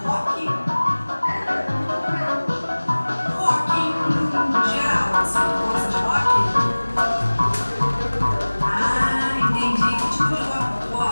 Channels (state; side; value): inverted; both; correlation -1.00